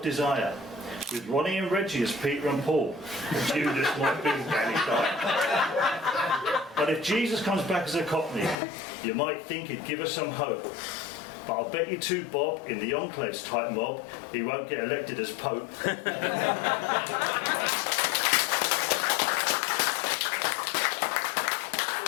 desire, with Ronnie and Reggie as Peter and Paul, Judas might be Danny Dyer. But if Jesus comes back as a cockney, you might think he'd give us some hope. But I'll bet you too, Bob, in the Enclaves type mob, he won't get elected as Pope.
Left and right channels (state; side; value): drops out; right; at 8.6 s